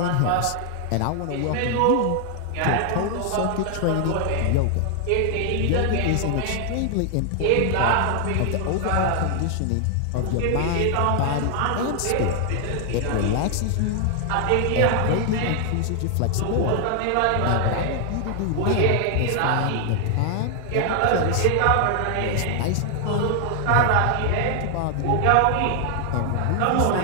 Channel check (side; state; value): both; different; correlation 0.00